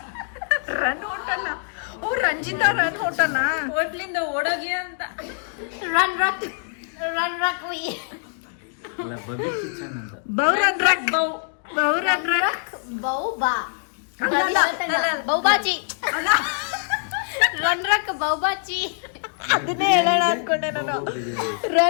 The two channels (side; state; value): right; silent; 63 dB below the other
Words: Run hotel? Oh, Ranjita run hotel ಹೋಟ್ಲಿಂದ ಓಡೋಗಿ ಅಂತ. ರನ್ ರಕ್, ರನ್ ರಕ್ ವಿ. ಬೌರನ್ ರಕ್, ಬೌರನ್ ರಕ್, ಬೌಬಾ, ಬೌಬಾಚಿ, ರನ್ ರಕ್ ಬೌಬಾಚಿ. ಅದನ್ನೇ ಹೇಳೋಣ ಅನ್ಕೊಂಡೆ ನಾನು.